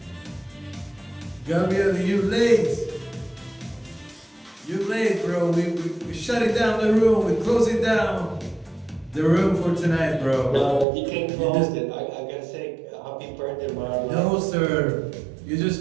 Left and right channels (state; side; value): drops out; left; at 10.9 s